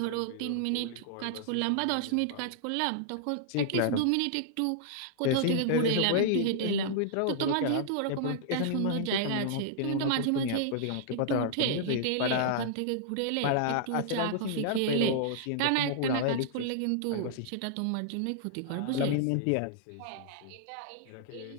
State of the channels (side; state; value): both; different; correlation -0.01